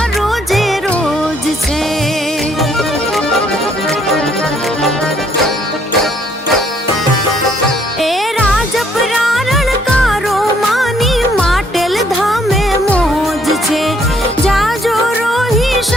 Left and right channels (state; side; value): normal; both; correlation 0.67